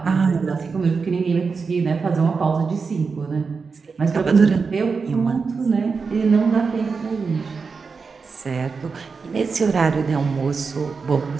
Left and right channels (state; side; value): quieter; left; 5.0 dB